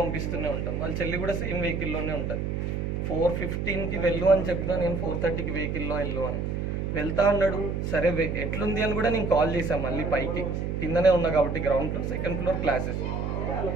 పంపిస్తూనే ఉంటాం. వాళ్ళ చెల్లి కూడా సేమ్ వెహికల్లోనే ఉంటుంది. 4:15కి వెళ్ళు అని చెప్తా, నేను 4:30కి వెహికల్లో వెళ్ళు అని వెళ్తా అన్నాడు. సరే ఎట్లుంది అని కూడా నేను కాల్ చేశాను. మళ్ళీ పైకి కిందనే ఉన్నా కాబట్టి ground floor, second floor classes.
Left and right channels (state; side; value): noise; right; hum, 2 dB below the sound